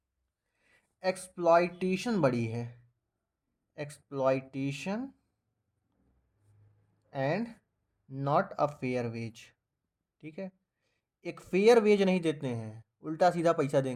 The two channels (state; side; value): identical; both; correlation 1.00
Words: एक्सप्लॉइटेशन बड़ी है, exploitation and not a fair wage. ठीक है, एक फेयर वेज नहीं देते हैं, उल्टा सीधा पैसा